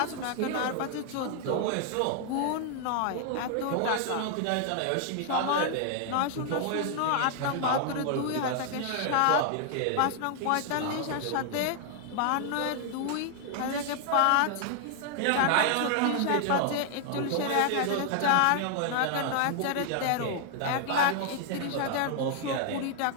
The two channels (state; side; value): different; both; correlation 0.00